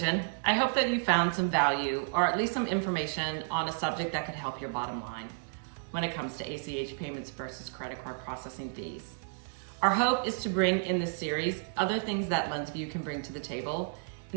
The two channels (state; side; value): silent; left; digital silence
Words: I hope that you found some value or at least some information on a subject that could help your bottom line when it comes to ACH payments versus credit card processing fees. Our hope is to bring in this series other things that LenzVU can bring to the table